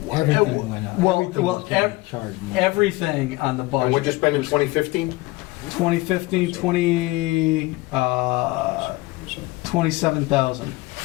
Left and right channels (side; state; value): right; quieter; 21.2 dB